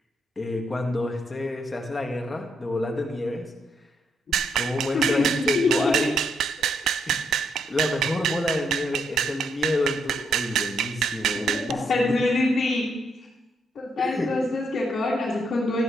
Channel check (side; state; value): both; normal; correlation 0.76